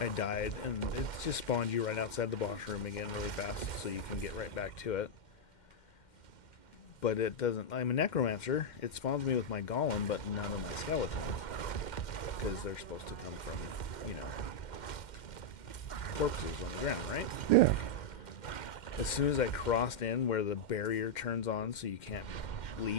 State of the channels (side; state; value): right; late; 2.1 ms